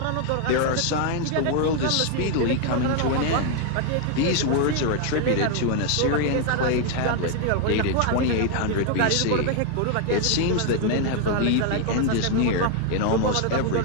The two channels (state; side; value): different; both; correlation 0.00